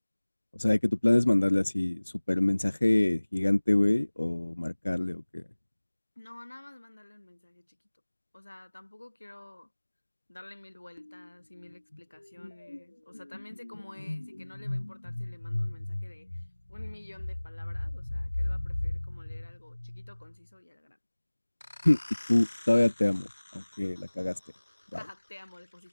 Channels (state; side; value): inverted; both; correlation -1.00